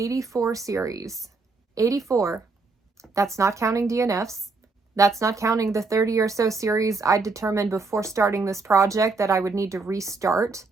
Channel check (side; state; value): left; quieter; 4.0 dB